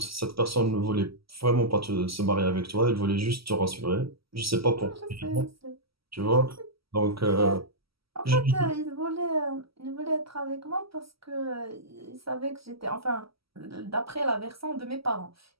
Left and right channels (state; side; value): late; left; 0.75 ms